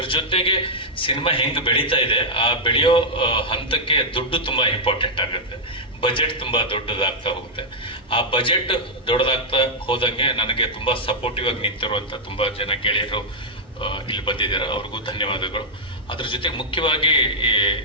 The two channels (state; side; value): normal; both; correlation -0.05